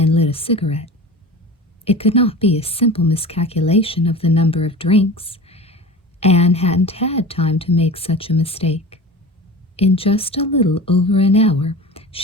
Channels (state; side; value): normal; both; correlation 0.34